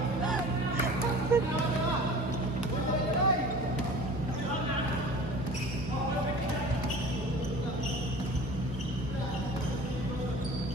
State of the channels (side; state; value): both; normal; correlation 0.41